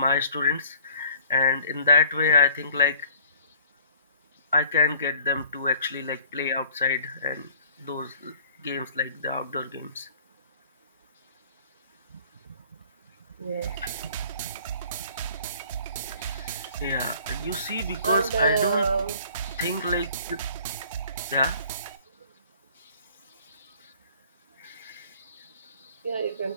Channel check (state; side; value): inverted; both; correlation -0.54